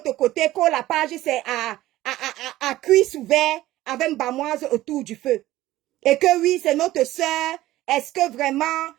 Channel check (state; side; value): quieter; left; 15.9 dB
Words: côté, que la page c'est à cuisse ouvert avec une bamoise autour du feu. Et que oui, c'est notre sœur. Est-ce que vraiment